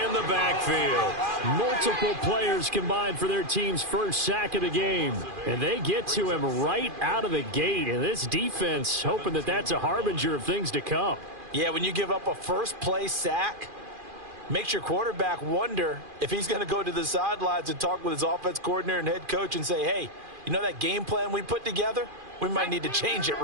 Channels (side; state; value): left; late; 2.4 ms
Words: the backfield. Multiple players combined for their team's first sack of the game. And they get to him right out of the gate. And this defense hoping that that's a harbinger of things to come. Yeah, when you give up a first play sack, makes your quarterback wonder if he's going to go to the sidelines and talk with his offense coordinator and head coach and say, hey, you know that game plan we put together? We might need to change it